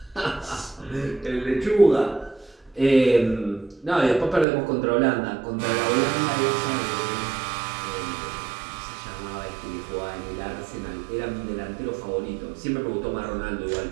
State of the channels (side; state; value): left; drops out; at 4.5 s